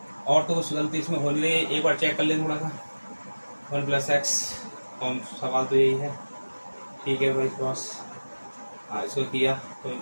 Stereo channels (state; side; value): inverted; both; correlation -1.00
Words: और तो कुछ गलती इसमें हो ले, एक बार चेक कर लें थोड़ा सा। 1 प्लस एक्स, सवाल तो यही है। ठीक है भाई बॉस, हाँ इसको किया तो